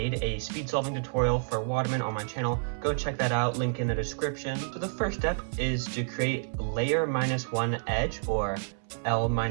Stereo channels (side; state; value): left; silent; 58 dB below the other